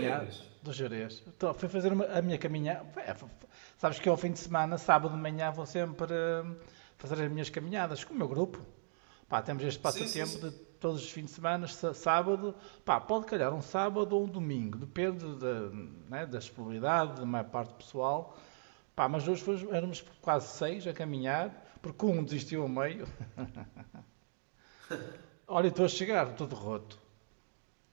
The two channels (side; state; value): left; silent; digital silence